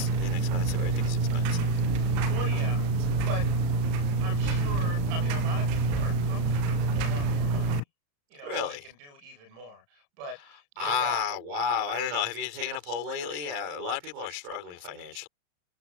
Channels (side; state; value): left; late; 35 ms